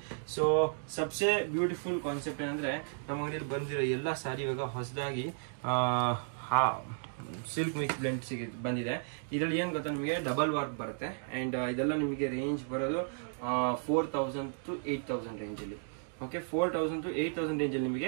ಸೊ ಸಬ್ಸೆ ಬ್ಯೂಟಿಫುಲ್ ಕಾನ್ಸೆಪ್ಟ್ ಏನಂದ್ರೆ, ನಮ್ಮ ಅಂಗಡಿಯಲ್ಲಿ ಬಂದಿರೋ ಎಲ್ಲ ಸಾರಿ ಇವಾಗ ಹೊಸದಾಗಿ ಸಿಲ್ಕ್ ಮಿಕ್ಸ್ ಬ್ಲೆಂಡ್ ಬಂದಿದೆ. ಇದರಲ್ಲಿ ಏನ್ ಗೊತ್ತಾ, ನಿಮಗೆ ಡಬಲ್ ವರ್ಕ್ ಬರುತ್ತೆ. ಅಂಡ್ ಇದೆಲ್ಲ ನಿಮಗೆ ರೇಂಜ್ ಬರೋದು 4000 to 8000 ರೇಂಜ್ ಅಲ್ಲಿ. ಓಕೆ, 4000 to 8000 ರೇಂಜ್ ಅಲ್ಲಿ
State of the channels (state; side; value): silent; left; digital silence